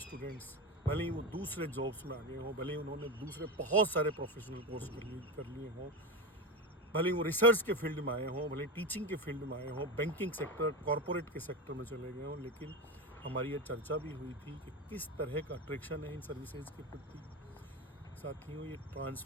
भले ही वो दूसरे जॉब्स में आ गए हों, भले ही उन्होंने दूसरे बहुत सारे प्रोफेशनल कोर्स कर लिए हों, भले ही वो रिसर्च के फील्ड में आए हों, भले टीचिंग के फील्ड में आए हों, बैंकिंग सेक्टर, कॉरपोरेट के सेक्टर में चले गए हों, लेकिन हमारी ये चर्चा भी हुई थी कि किस तरह का अट्रैक्शन है इन सर्विसेज के प्रति। साथियों, ये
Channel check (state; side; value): normal; both; correlation 0.20